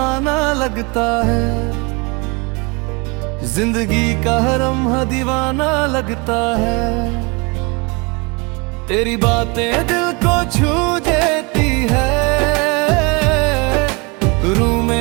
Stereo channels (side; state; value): left; quieter; 29.0 dB